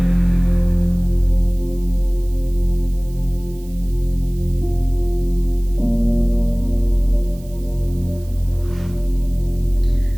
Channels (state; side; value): noise; right; hiss, 25 dB below the sound